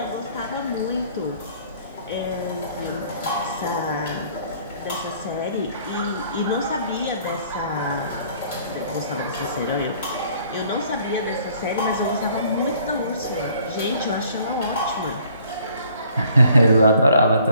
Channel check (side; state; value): both; inverted; correlation -0.58